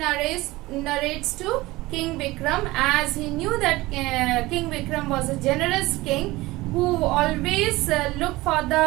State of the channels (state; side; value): quieter; left; 19.8 dB